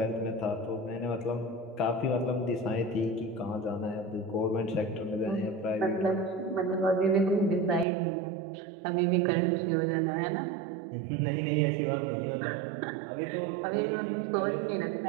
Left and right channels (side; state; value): left; drops out; at 7.9 s